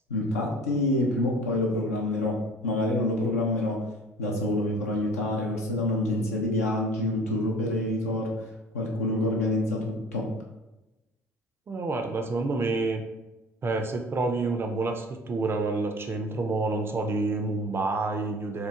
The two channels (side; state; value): both; normal; correlation 0.44